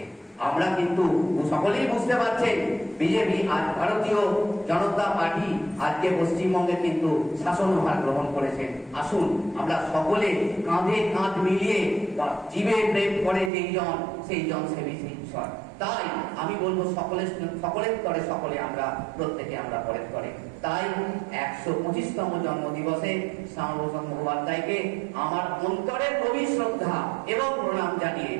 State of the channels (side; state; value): left; drops out; at 13.5 s